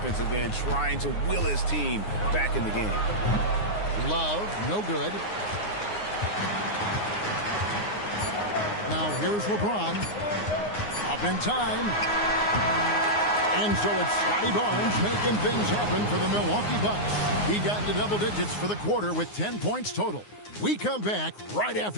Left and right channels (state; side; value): late; right; 9.6 ms